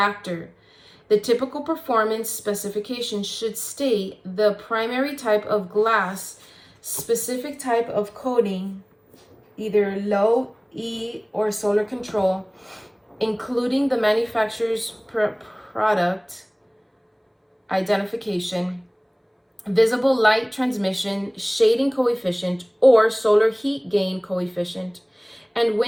The typical performance specification should state the primary type of glass, specific type of coating, either low E or solar control, including the manufacturer's product identification, visible light transmission, shading coefficient, or solar heat gain coefficient, and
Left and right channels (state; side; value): identical; both; correlation 1.00